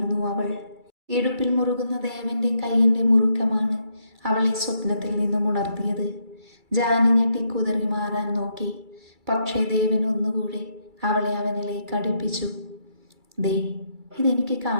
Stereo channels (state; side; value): late; left; 2.3 ms